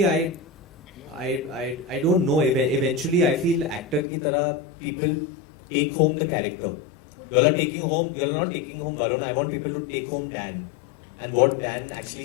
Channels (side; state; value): right; drops out; at 4.0 s